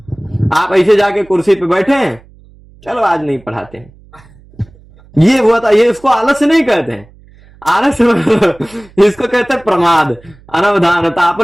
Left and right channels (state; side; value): noise; right; hum, 26 dB below the sound